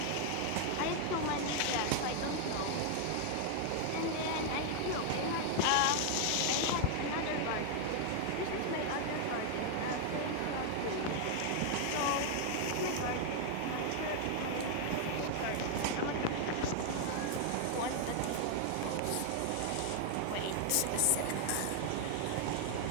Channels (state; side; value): different; both; correlation 0.00